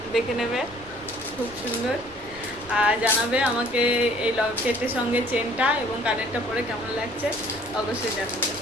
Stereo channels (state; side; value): noise; left; rumble, 23 dB below the sound